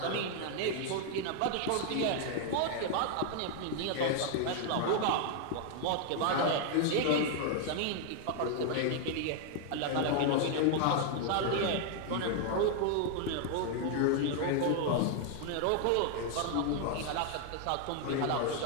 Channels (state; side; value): different; both; correlation 0.00